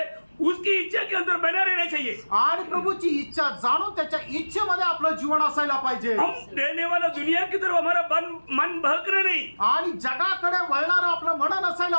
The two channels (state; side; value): inverted; both; correlation -1.00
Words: उसकी इच्छा के अंदर बना रहना चाहिए। आणि प्रभूची इच्छा जाणून त्याच्या इच्छेमध्ये आपलं जीवन असायला पाहिजे. हम रहने वाला दुनिया की तरफ हमारा मन बहकना नहीं। आणि जगाकडे वळणारं आपलं मन